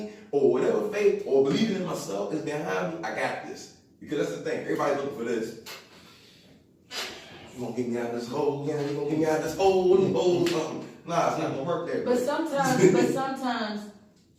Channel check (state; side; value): identical; both; correlation 1.00